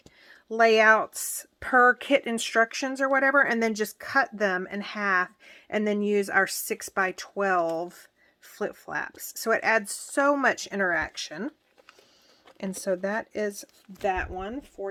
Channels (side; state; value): both; identical; correlation 1.00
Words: layouts per kit instructions or whatever, and then just cut them in half and then use our 6x12 flip flaps. So it adds so much interaction. And so that is that one